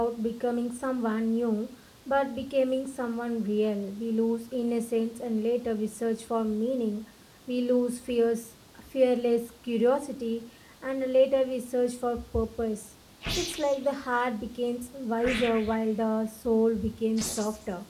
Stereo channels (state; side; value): identical; both; correlation 1.00